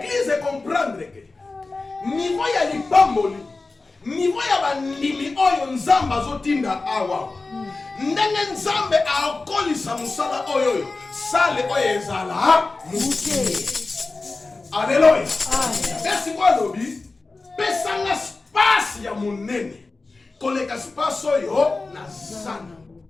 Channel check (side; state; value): right; quieter; 3.6 dB